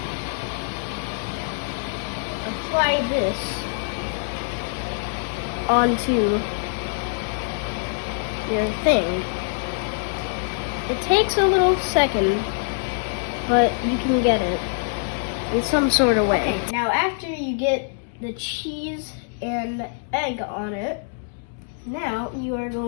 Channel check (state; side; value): silent; right; 62 dB below the other